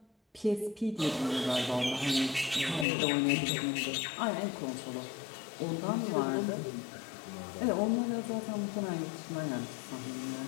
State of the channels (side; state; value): right; drops out; at 2.9 s